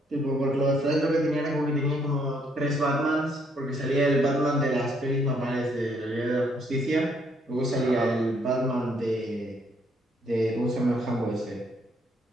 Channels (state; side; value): normal; both; correlation 0.69